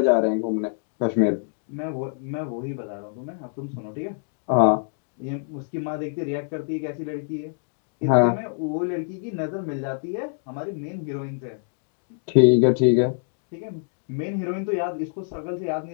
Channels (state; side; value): silent; right; digital silence